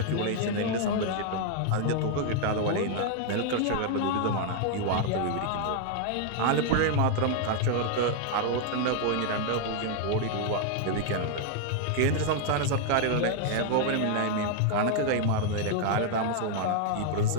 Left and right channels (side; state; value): both; different; correlation 0.00